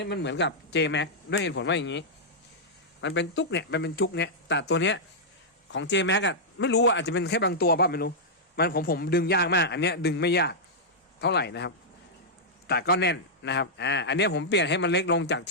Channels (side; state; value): both; normal; correlation -0.08